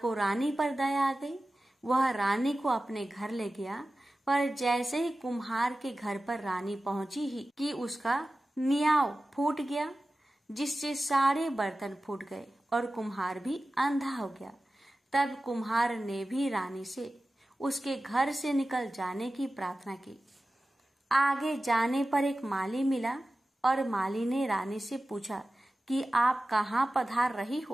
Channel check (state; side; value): normal; both; correlation 0.95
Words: रानी पर दया आ गई। वह रानी को अपने घर ले गया, पर जैसे ही कुम्हार के घर पर रानी पहुंची ही कि उसका नियाव फूट गया, जिससे सारे बर्तन फूट गए और कुम्हार भी अंधा हो गया। तब कुम्हार ने भी रानी से उसके घर से निकल जाने की प्रार्थना की। आगे जाने पर एक माली मिला और माली ने रानी से पूछा कि आप कहाँ पधार रही